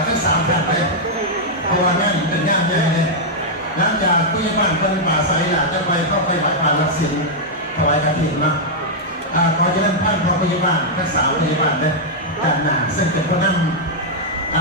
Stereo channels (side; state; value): both; normal; correlation -0.05